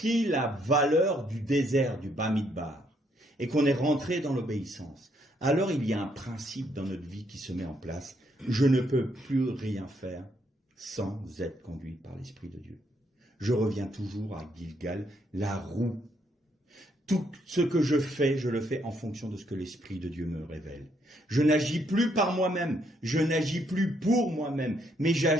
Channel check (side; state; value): both; normal; correlation 0.73